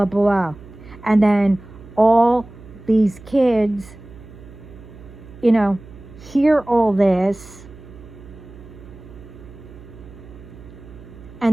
blah. And then all these kids, you know, hear all this,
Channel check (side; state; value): right; noise; hum, 18 dB below the sound